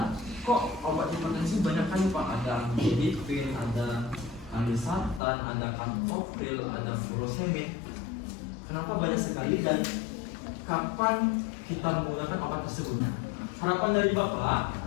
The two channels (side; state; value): right; drops out; at 5.2 s